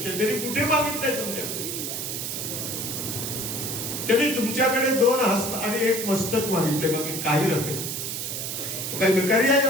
तरी कुठे मागितलंय तुमच्याकडे? त्यांनी तुमच्याकडे 2 हस्त आणि 1 मस्तक मागितले, बाकी काही नव्हे. काही भिकारी आहे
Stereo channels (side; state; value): right; noise; hiss, 4 dB below the sound